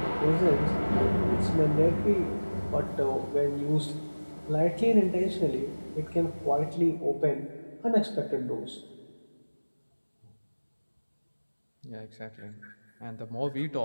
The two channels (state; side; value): inverted; both; correlation -1.00